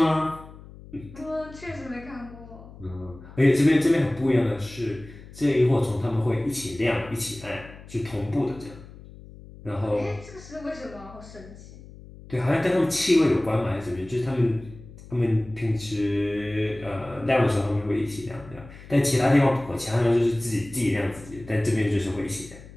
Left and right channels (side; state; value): left; noise; hum, 18 dB below the sound